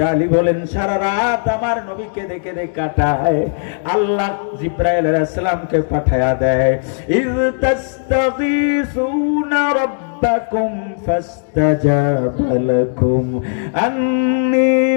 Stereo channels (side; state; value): right; silent; digital silence